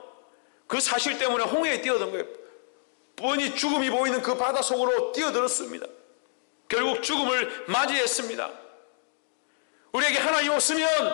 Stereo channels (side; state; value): right; silent; 60 dB below the other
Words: 그 사실 때문에 홍해에 뛰어든 거예요. 뻔히 죽음이 보이는 그 바다 속으로 뛰어들었습니다. 결국 죽음을 맞이했습니다. 우리에게 하나님